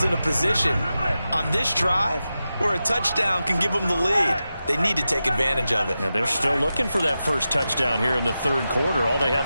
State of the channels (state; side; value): inverted; both; correlation -0.92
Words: in a position on this drive where a touchdown can give them the lead. They need to take advantage of it. And they're still looking for that first touchdown here in the third quarter. All they